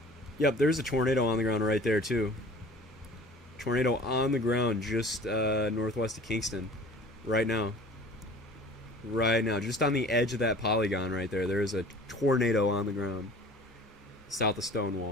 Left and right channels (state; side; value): normal; both; correlation 0.46